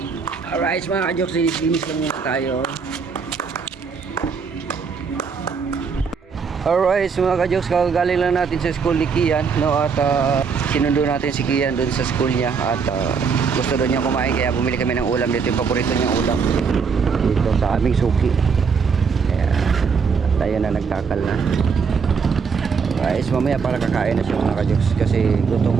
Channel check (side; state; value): left; quieter; 5.7 dB